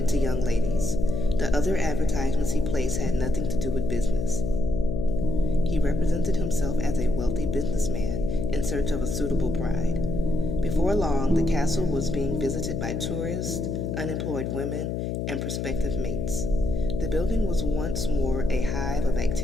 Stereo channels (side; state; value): left; noise; hum, 2 dB below the sound